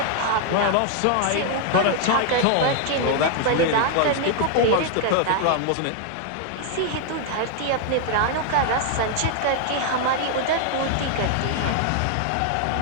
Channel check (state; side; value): different; both; correlation 0.00